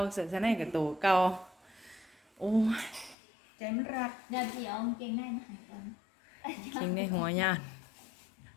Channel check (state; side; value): drops out; right; at 3.2 s